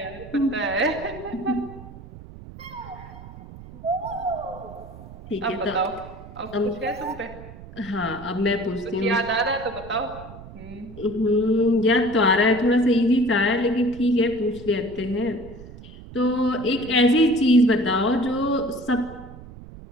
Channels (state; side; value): noise; right; rumble, 16 dB below the sound